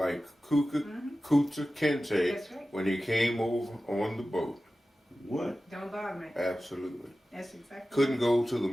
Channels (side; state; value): both; normal; correlation 0.95